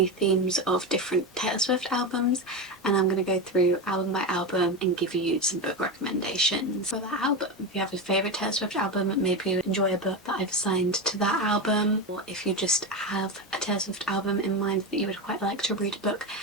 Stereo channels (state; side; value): normal; both; correlation 0.17